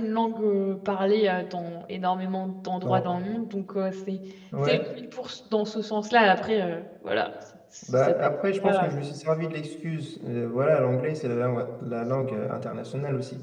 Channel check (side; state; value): both; identical; correlation 1.00